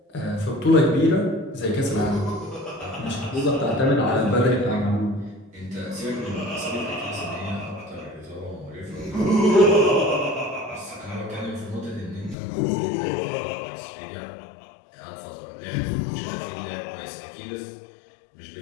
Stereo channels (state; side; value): drops out; right; at 12.4 s